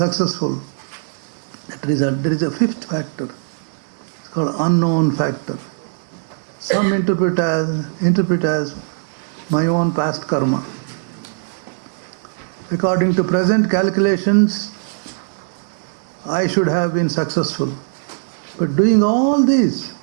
There is a fifth factor. It's called unknown factor. Some interpret as my own past karma. According to present calculations, I should have been successful. But doing all this,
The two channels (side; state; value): left; silent; digital silence